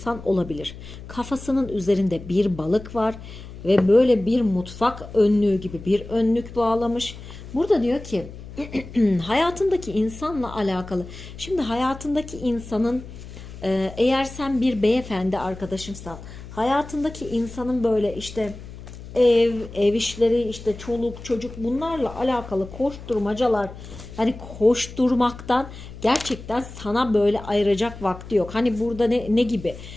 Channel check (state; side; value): noise; left; hum, 14 dB below the sound